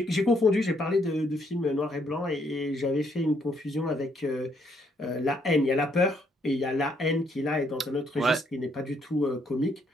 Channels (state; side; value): normal; both; correlation 0.71